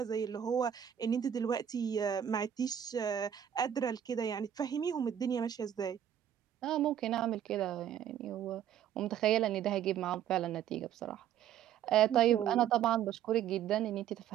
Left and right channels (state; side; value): quieter; left; 9.9 dB